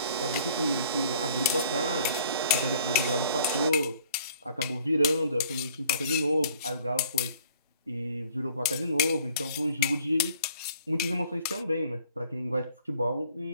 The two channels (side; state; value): both; inverted; correlation -0.55